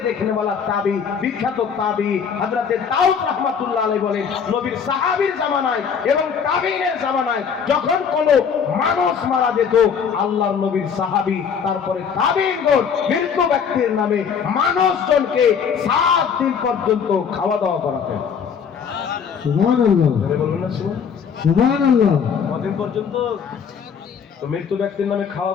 দেখনে वाला তাবি, বিখ্যাত তাবি হযরতে দাউদ রাহমাতুল্লাহ আলাইহি বলেন, নবীর সাহাবীর জামানায় এবং তাবিঈনের জামানায় যখন কোনো মানুষ মারা যেত, আল্লাহর নবীর সাহাবী তারপরে তাবিঈনগণ মৃত্যু ব্যক্তির নামে মানুষজনকে 7 দিন পর্যন্ত খাওয়া দাওয়া করাতেন। সুবহানাল্লাহ, বলুন না সুবহানাল্লাহ। কতদিন পর্যন্ত? তো মৃত্যু ব্যক্তির নামে খাওয়া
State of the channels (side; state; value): right; quieter; 6.9 dB